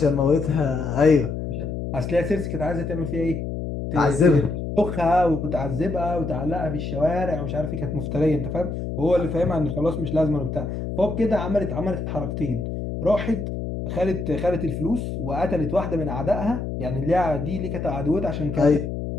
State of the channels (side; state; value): left; noise; hum, 5 dB below the sound